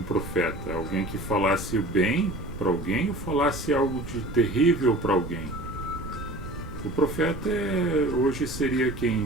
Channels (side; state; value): right; noise; rumble, 11 dB below the sound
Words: profeta? Alguém que falasse o bem para alguém ou falasse algo de terrível para alguém? O profeta hoje seria